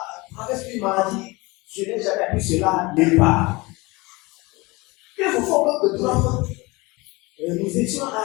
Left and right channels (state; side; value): quieter; right; 23.8 dB